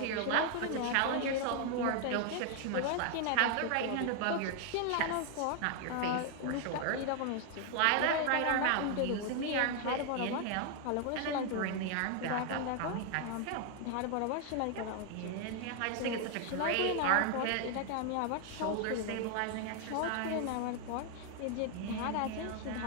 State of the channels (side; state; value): both; different; correlation 0.00